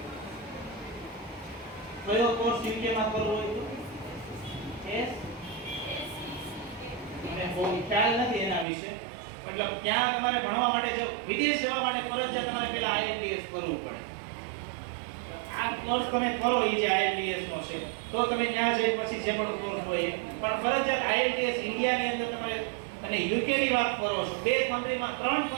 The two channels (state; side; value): drops out; left; at 8.7 s